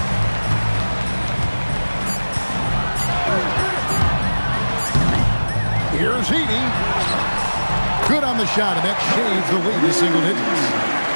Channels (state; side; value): inverted; both; correlation -1.00